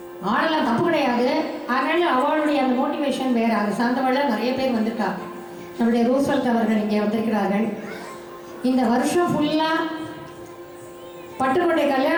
ஆடலாம், தப்பு கிடையாது. அதனால் அவளுடைய அந்த மோட்டிவேஷன் வேறு. அதை சார்ந்தவள் நிறைய பேர் வந்துட்டா. நம்முடைய ரூஸ்வெல்ட் அவர்கள் இங்கே வந்திருக்கிறார்கள். இந்த வருஷம் ஃபுல்லாக பட்டுக்கோட்டை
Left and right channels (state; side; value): identical; both; correlation 1.00